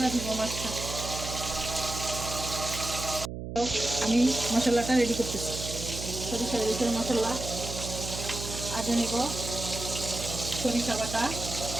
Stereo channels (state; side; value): noise; right; hum, 7 dB below the sound